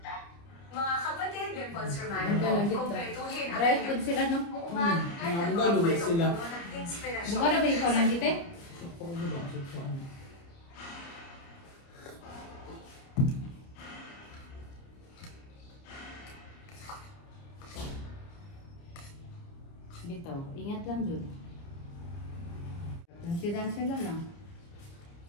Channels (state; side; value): late; right; 29 ms